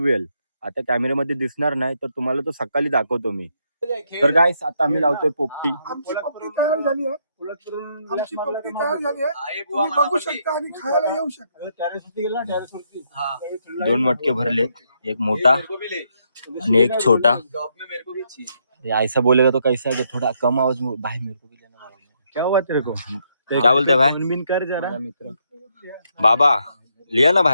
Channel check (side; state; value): both; inverted; correlation -0.75